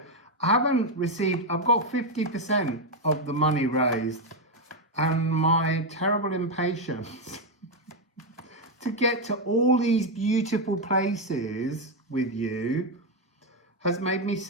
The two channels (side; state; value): both; normal; correlation 0.04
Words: I haven't received, I've got 50% of the money raised, and my terrible impatience to get to all these beautiful places with you has made me